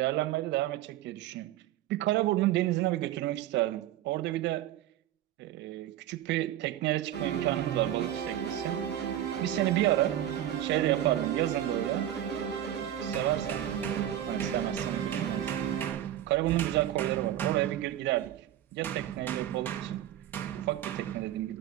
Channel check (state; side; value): quieter; left; 12.4 dB